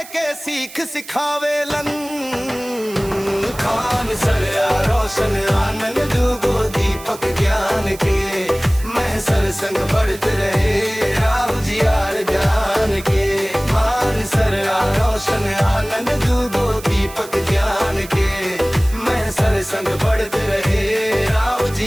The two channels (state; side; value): noise; right; hiss, 17 dB below the sound